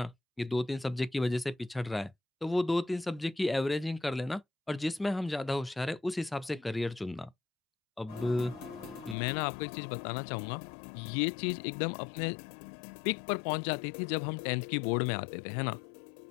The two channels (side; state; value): right; drops out; at 9.2 s